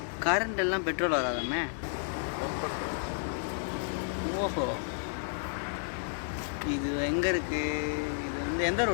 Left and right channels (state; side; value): silent; right; digital silence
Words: கரண்ட் எல்லாம் பெட்ரோல் வராதாமே. ஓஹோ, இது எங்கே இருக்குது? இது வந்து எந்த